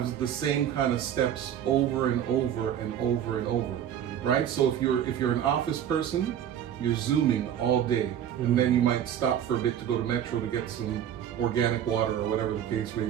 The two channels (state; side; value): quieter; left; 9.9 dB